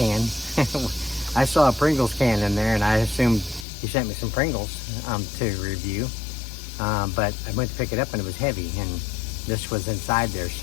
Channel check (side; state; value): right; drops out; at 3.7 s